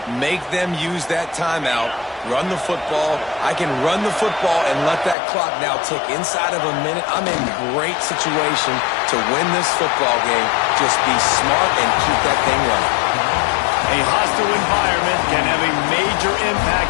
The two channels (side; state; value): right; drops out; at 5.2 s